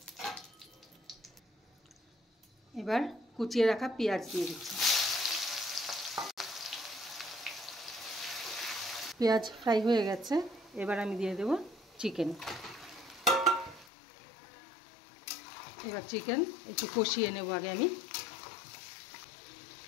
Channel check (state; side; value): drops out; right; at 13.9 s